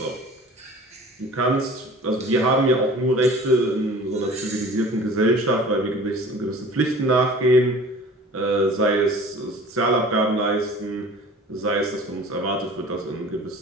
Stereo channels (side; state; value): both; normal; correlation 0.44